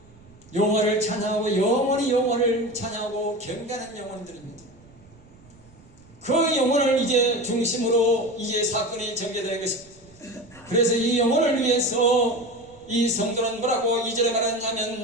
여호와를 찬양하고 영원히 여호와를 찬양하고 경배하는 영혼들입니다. 그 영혼을 이제 중심으로 이제 사건이 전개되는 것입니다. 그래서 이 영혼을 위해서 이 성도는 뭐라고 2절에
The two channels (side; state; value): right; noise; rumble, 26 dB below the sound